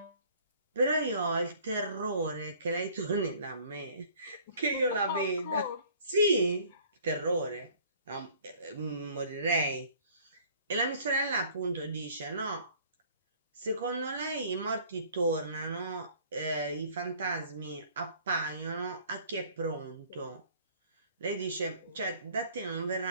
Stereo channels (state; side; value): inverted; both; correlation -0.54